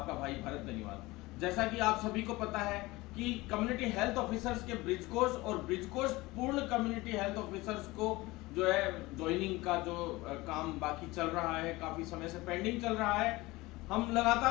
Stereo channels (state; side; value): quieter; right; 20.8 dB